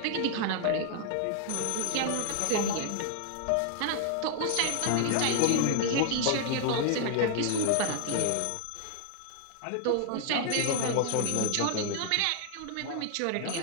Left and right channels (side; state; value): both; different; correlation 0.00